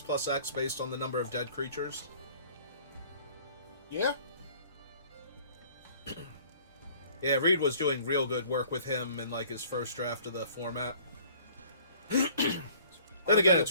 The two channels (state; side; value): inverted; both; correlation -0.53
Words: based on the number of dead creatures. Yeah? Yeah, Reed was doing real good work with him in, like, his first draft of the format. Then again, it's